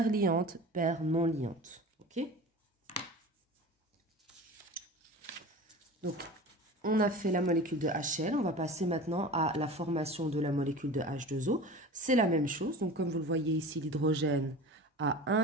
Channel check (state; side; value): normal; both; correlation 0.35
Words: liante, paire non liante. OK? Donc, on a fait la molécule de HCl, on va passer maintenant à la formation de la molécule de H2O. C'est la même chose, donc comme vous le voyez ici, l'hydrogène a